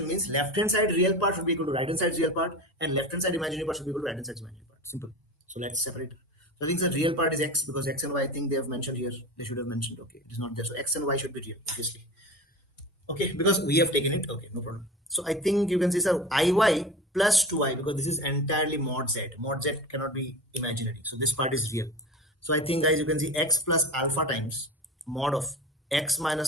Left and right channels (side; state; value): both; normal; correlation 0.31